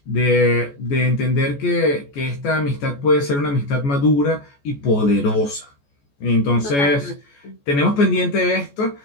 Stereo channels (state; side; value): late; right; 14 ms